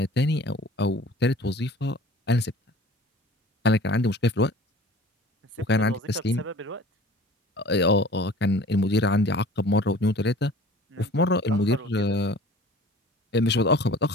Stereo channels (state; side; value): normal; both; correlation 0.45